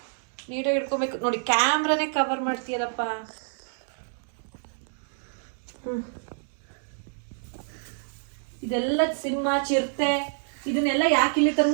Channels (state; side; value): silent; left; digital silence